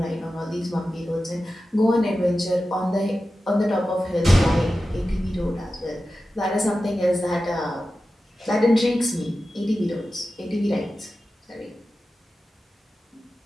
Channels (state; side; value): normal; both; correlation 0.93